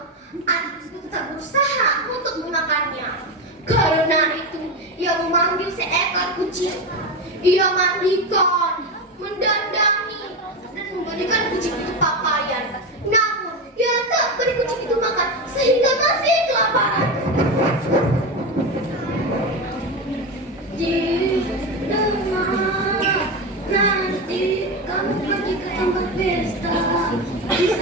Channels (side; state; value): both; normal; correlation 0.17